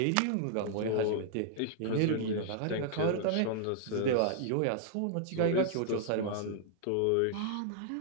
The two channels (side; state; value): both; different; correlation -0.01